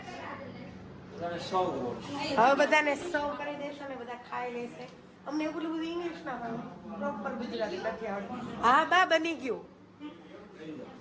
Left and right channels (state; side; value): identical; both; correlation 1.00